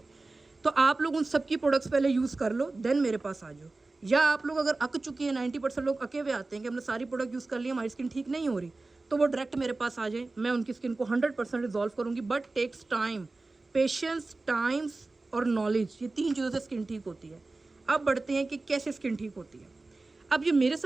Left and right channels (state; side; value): quieter; left; 3.4 dB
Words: तो आप लोग उन सब की प्रोडक्ट्स पहले यूज़ कर लो, देन मेरे पास आ जाओ। या आप लोग अगर अक चुके हैं, 90% लोग अके हुए आते हैं कि हमने सारी प्रोडक्ट यूज़ कर लिया, हमारी स्किन ठीक नहीं हो रही, तो वो डायरेक्ट मेरे पास आ जाए। मैं उनकी स्किन को 100% रिजॉल्व करूँगी, but takes time, patience, times और नॉलेज, ये 3 चीज़ों से स्किन ठीक होती है। अब बढ़ते हैं कि कैसे स्किन ठीक होती है। अब ये मेरे